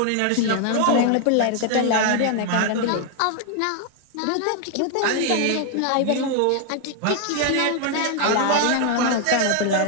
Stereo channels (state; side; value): different; both; correlation 0.00